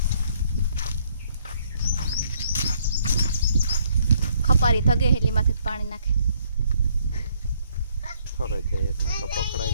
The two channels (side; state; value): both; inverted; correlation -0.67